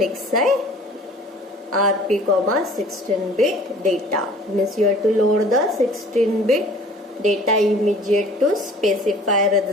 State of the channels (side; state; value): both; normal; correlation 0.49